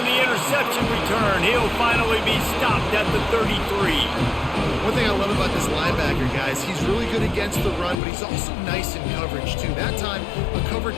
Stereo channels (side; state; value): right; drops out; at 8.0 s